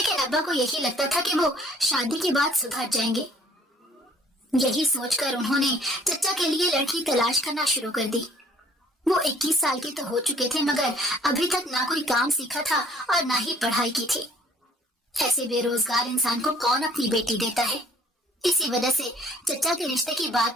ابا کو یہی لگتا تھا کہ وہ شادی کے بعد سدھر جائیں گے۔ یہی سوچ کر انہوں نے چچا کے لیے لڑکی تلاش کرنا شروع کر دی۔ وہ 21 سال کے تو ہو چکے تھے مگر ابھی تک نہ کوئی کام سیکھا تھا اور نہ ہی پڑھائی کی تھی۔ ایسے بے روزگار انسان کو کون اپنی بیٹی دیتا ہے؟ اسی وجہ سے چچا کے رشتے کی بات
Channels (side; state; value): both; normal; correlation 0.57